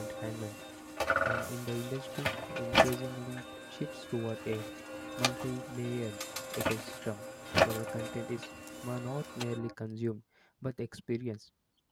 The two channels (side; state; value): both; identical; correlation 1.00